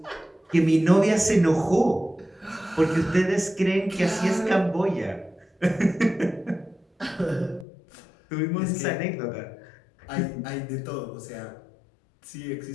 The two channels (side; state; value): right; drops out; at 7.7 s